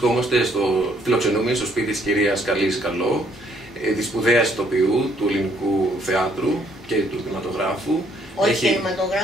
φιλοξενούμενοι στο σπίτι της κυρίας Καλής Καλό, της σπουδαίας ηθοποιού του ελληνικού θεάτρου και του κινηματογράφου. Όχι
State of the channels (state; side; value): normal; both; correlation 0.67